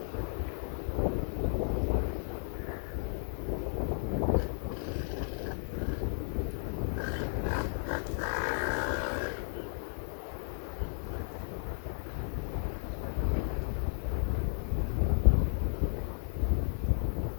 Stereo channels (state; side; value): silent; right; 55 dB below the other